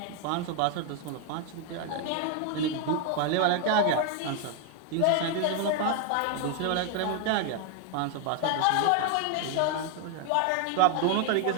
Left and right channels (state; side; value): different; both; correlation 0.01